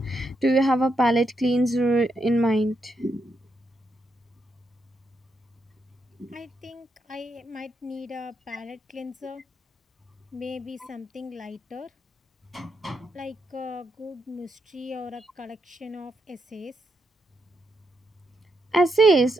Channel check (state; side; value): normal; both; correlation 0.81